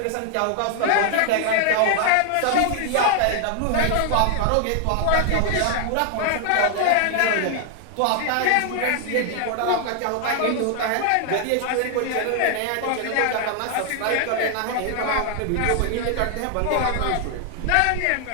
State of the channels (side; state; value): both; different; correlation 0.00